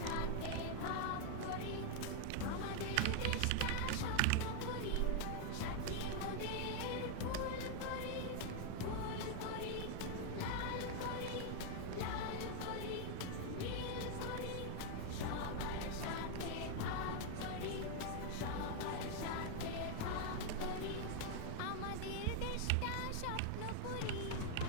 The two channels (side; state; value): both; different; correlation 0.00